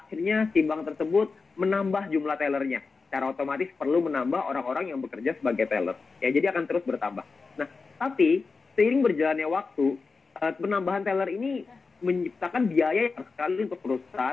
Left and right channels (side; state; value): right; quieter; 4.5 dB